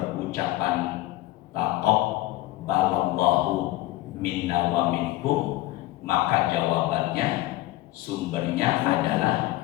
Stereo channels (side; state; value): right; quieter; 17.0 dB